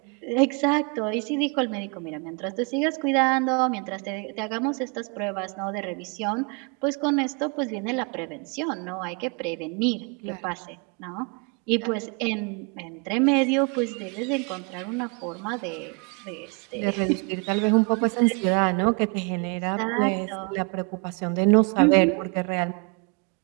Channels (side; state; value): left; quieter; 34.4 dB